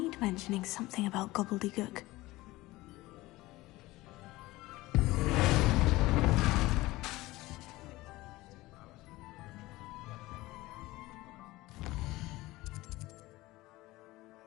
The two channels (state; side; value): quieter; right; 19.1 dB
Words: mentioning something about gobbledygook.